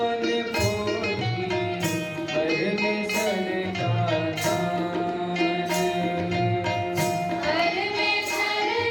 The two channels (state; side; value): identical; both; correlation 1.00